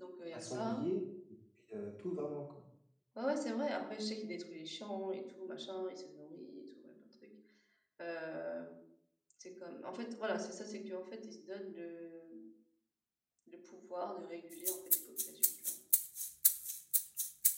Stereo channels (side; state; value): both; identical; correlation 1.00